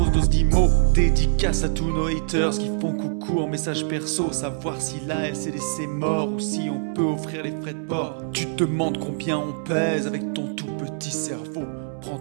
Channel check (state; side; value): silent; left; 63 dB below the other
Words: dose d'IMO. Dédicace à tous nos haters qui font coucou en message perso. Savoir si la LCD c'est mort ou si on peut offrir les frais de port. Tu te demandes combien on pèse avec ton tout petit cerveau. Prends